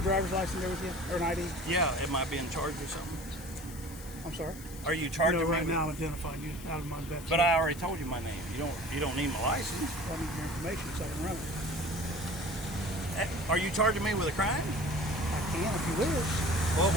driver's license there with you, or an ID? Yeah. Am I being charged or something? I'm sorry. Are you charging No, me? right with- now I'm identifying you out of my investigation. But I already told you my name. You don't need my license. I need your information so I can run it. Are you charging me with a crime? I can if you wish. Well,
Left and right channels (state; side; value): noise; left; hiss, 17 dB below the sound